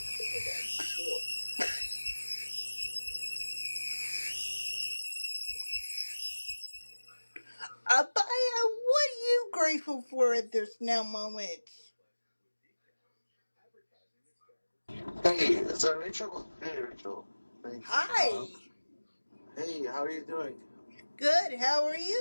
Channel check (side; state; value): both; inverted; correlation -1.00